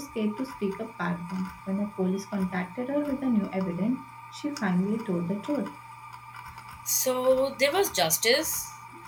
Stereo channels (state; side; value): identical; both; correlation 1.00